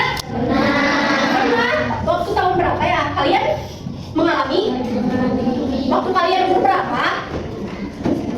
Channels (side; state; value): both; identical; correlation 1.00